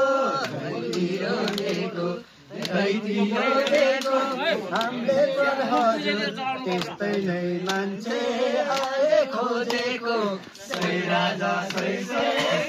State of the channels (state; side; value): identical; both; correlation 1.00